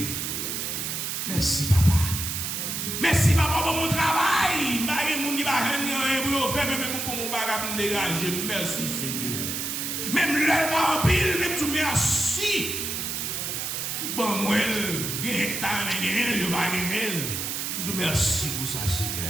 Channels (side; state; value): right; noise; hiss, 3 dB below the sound